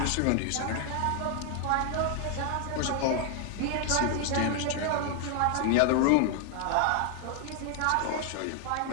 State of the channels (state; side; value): different; both; correlation 0.00